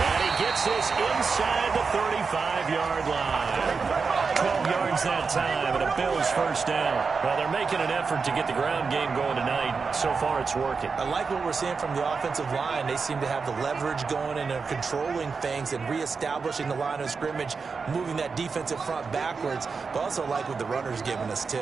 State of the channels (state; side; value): quieter; left; 5.0 dB